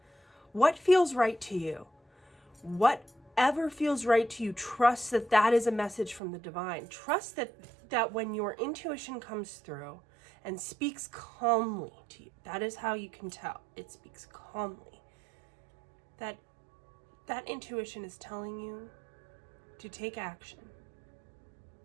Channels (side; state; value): left; drops out; at 6.2 s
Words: What feels right to you? Whatever feels right to you, trust that that is a message from the divine. Trust that when your intuition comes through and speaks calmly to you, that is how you can tell. It speaks calmly. That intuition is telling you to take action.